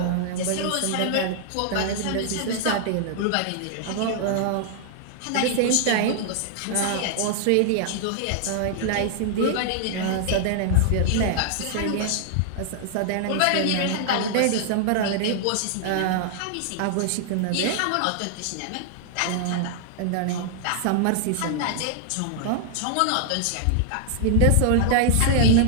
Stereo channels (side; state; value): both; different; correlation 0.00